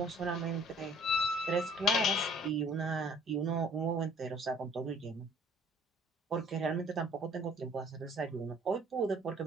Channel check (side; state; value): both; normal; correlation 0.55